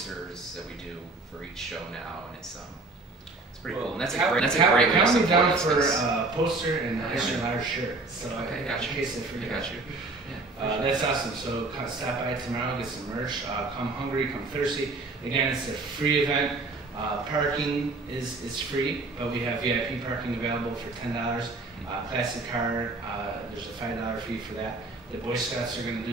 that we do for each show now, and it's pretty cool. And that's a great way to Count me support down us, for 'cause- a poster and an extra large shirt. So Okay, got in you. case I forget. I got you. Yeah. That's awesome. So stop by tomorrow, get some merch. Come hungry, come thirsty. Again, it's a free event. Parking is free, but we have VIP parking available for $10. Classic car, there's a $5 fee for that. The Boy Scouts are going to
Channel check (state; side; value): quieter; left; 3.4 dB